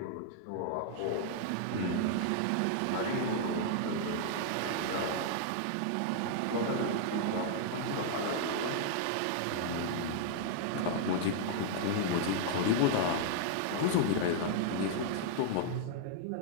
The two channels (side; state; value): both; different; correlation -0.01